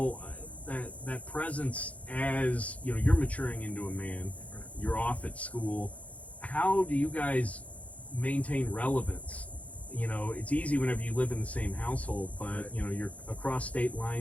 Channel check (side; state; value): right; late; 0.067 ms